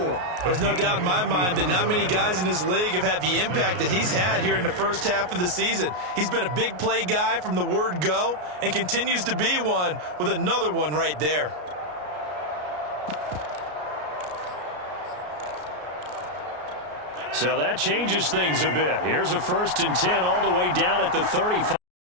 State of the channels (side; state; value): left; late; 33 ms